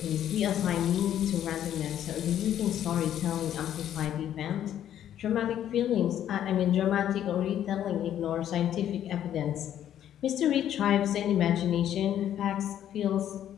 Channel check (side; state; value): right; quieter; 10.8 dB